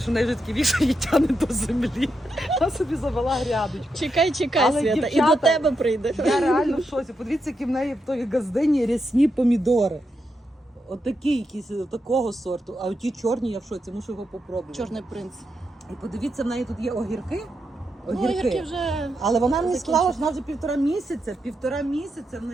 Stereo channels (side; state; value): both; normal; correlation 0.84